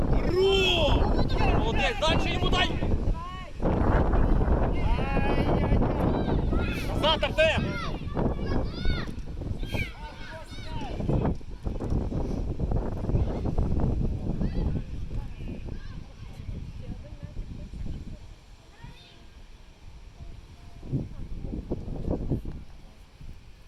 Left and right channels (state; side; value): identical; both; correlation 1.00